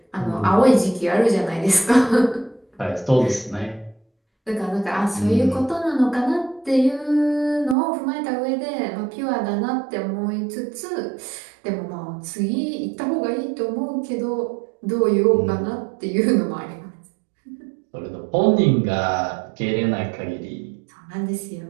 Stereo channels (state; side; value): drops out; left; at 7.8 s